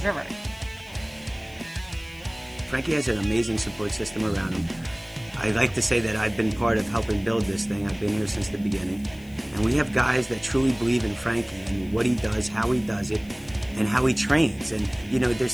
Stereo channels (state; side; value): noise; left; hiss, 25 dB below the sound